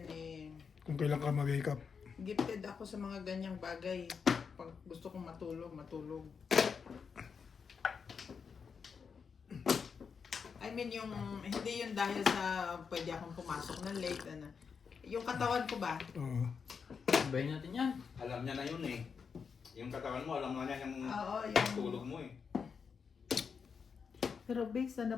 eh, Kung kailan ka mag-wake up. gifted ako sa mga ganyang bagay. Pag gusto kong matulog, matulog. I mean yung, hindi yun dahil sa pwede akong pumasok ng late. Ano. Yung katawan ko ba? Oo. Sabayin natin yan. Alam niya na yun eh. Yung katawan mo, alam na niya yung Oo, yung tulog mo eh. Pero based na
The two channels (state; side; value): quieter; right; 6.0 dB